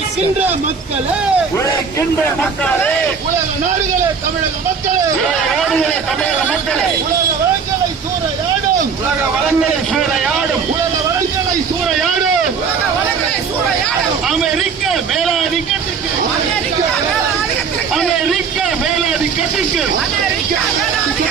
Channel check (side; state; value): left; quieter; 5.9 dB